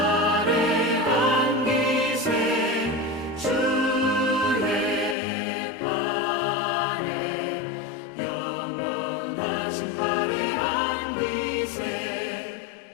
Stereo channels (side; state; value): right; drops out; at 5.2 s